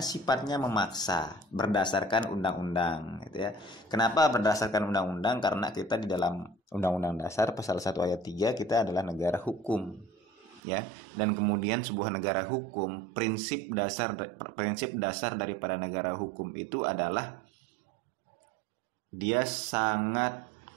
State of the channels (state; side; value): drops out; left; at 10.6 s